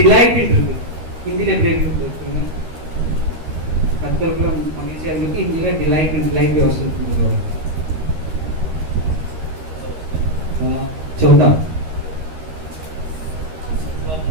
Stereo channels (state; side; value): late; left; 13 ms